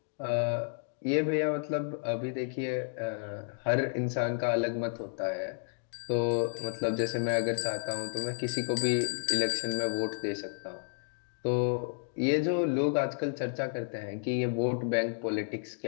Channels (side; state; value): right; silent; digital silence